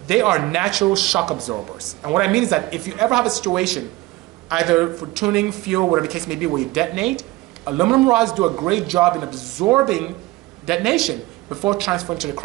they are natural shock absorbers. And what I mean is that if you ever have a situation, either for tuning, fuel, whatever the case may be, where you detonate, aluminum rods do a great job in absorbing detonation before transferring to the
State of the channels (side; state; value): left; quieter; 20.0 dB